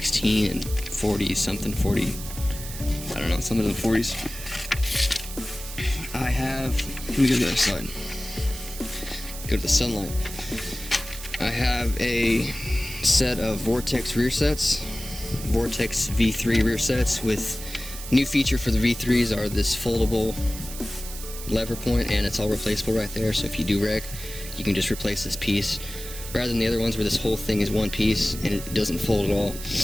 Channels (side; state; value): right; noise; hiss, 11 dB below the sound